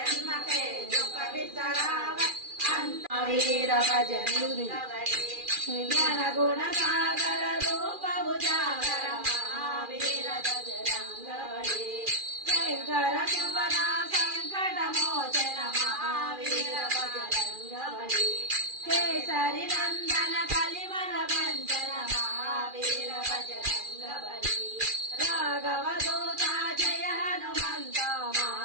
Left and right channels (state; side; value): late; left; 2.4 ms